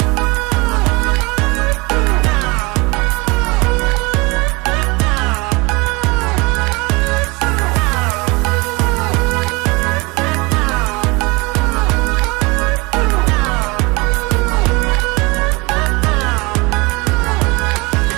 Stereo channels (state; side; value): quieter; left; 26.0 dB